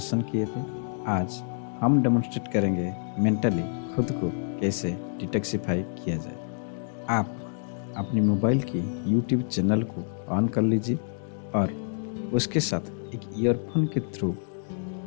किए थे। आज हम डेमोन्स्ट्रेट करेंगे मेंटली खुद को कैसे डिटॉक्सिफाई किया जाए। आप अपनी मोबाइल की यूट्यूब चैनल को ऑन कर लीजिए और उसके साथ एक ईयरफोन के थ्रू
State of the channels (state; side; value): silent; right; digital silence